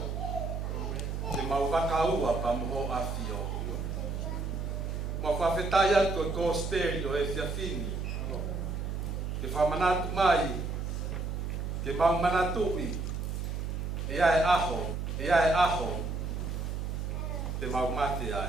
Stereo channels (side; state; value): right; noise; hum, 3 dB below the sound